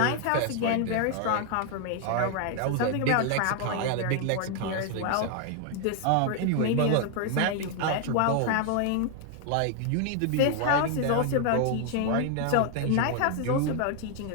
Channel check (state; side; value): different; both; correlation 0.00